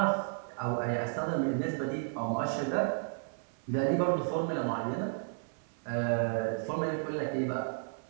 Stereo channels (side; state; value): left; silent; 56 dB below the other